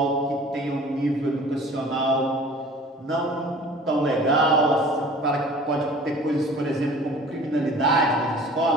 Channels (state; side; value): normal; both; correlation 0.46